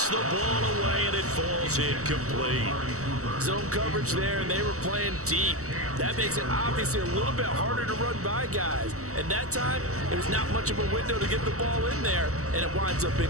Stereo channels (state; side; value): late; left; 0.65 ms